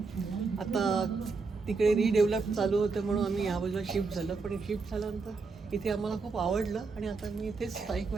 आता तिकडे रिडेव्हलप चालू होतं म्हणून आम्ही ह्या बाजूला शिफ्ट झालं. पण शिफ्ट झाल्यानंतर इथे आम्हाला खूप आवडलं आणि आता मी इथेच स्थायिक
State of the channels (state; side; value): quieter; left; 4.4 dB